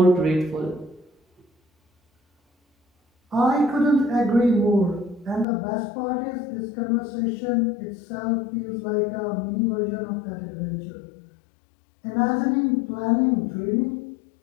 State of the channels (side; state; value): right; drops out; at 5.5 s